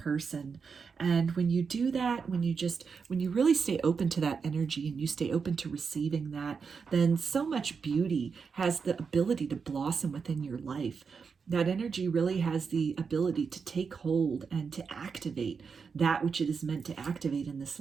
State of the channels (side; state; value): left; quieter; 5.6 dB